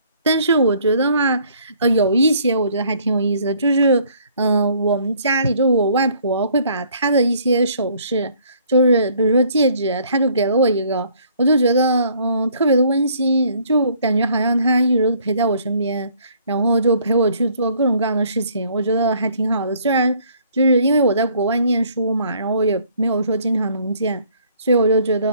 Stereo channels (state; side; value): inverted; both; correlation -0.61